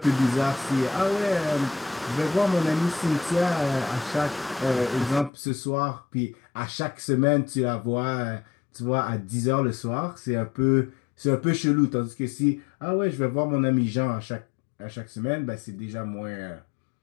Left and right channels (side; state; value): right; drops out; at 5.3 s